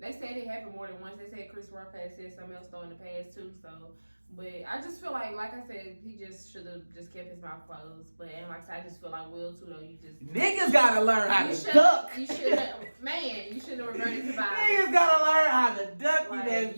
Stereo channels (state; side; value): inverted; both; correlation -1.00